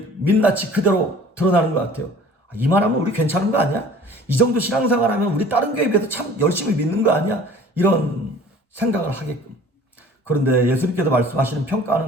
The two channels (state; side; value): normal; both; correlation 0.48